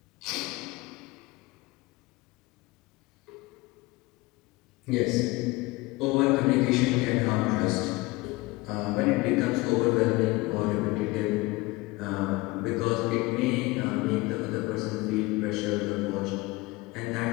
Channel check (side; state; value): right; quieter; 21.9 dB